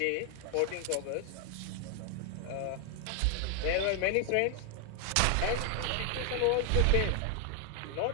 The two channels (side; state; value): both; different; correlation 0.00